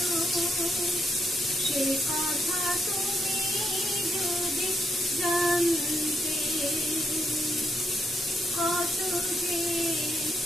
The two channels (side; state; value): both; normal; correlation 0.77